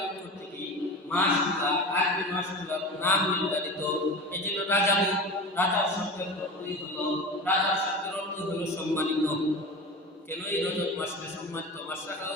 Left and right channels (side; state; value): both; normal; correlation 0.30